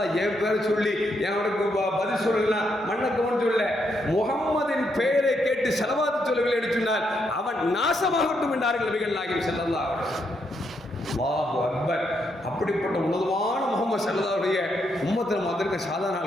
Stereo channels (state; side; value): normal; both; correlation 0.78